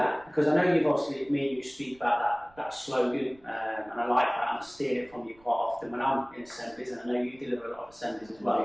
because I know you've obviously, me and you speak about that slogan, and I like that, and I steal it from you quite often when I'm in assemblies, and I know you deliver a lot of assemblies as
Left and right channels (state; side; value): noise; right; rumble, 28 dB below the sound